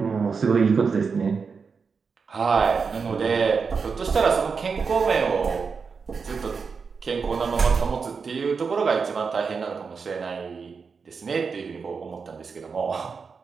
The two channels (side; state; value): left; quieter; 5.3 dB